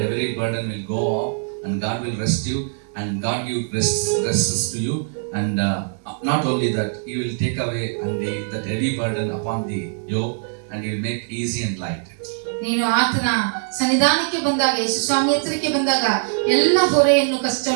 every burden will go off and God will rest you and God give rests to you, and not only that, He will take away that heavy burden upon the yoke, and He will make easy and light. ನೀನು ಆತನ ಸನ್ನಿಧಾನಕ್ಕೆ ಬಂದಾಗ, ಯೇಸು ಸ್ವಾಮಿ ಹತ್ತಿರಕ್ಕೆ ಬಂದಾಗ ಎಲ್ಲ ಹೊರೆಯನ್ನು,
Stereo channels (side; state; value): left; silent; digital silence